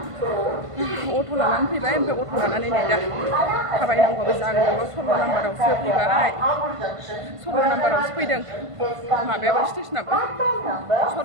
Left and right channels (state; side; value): late; left; 1.5 ms